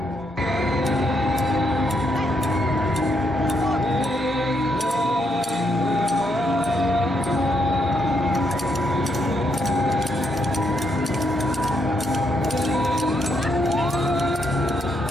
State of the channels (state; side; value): normal; both; correlation 0.77